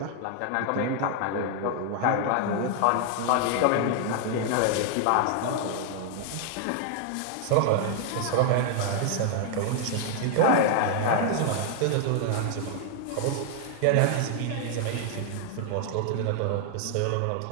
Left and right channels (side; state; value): both; different; correlation 0.00